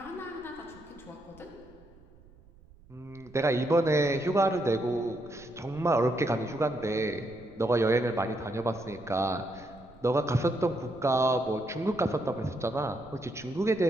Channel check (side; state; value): right; noise; rumble, 25 dB below the sound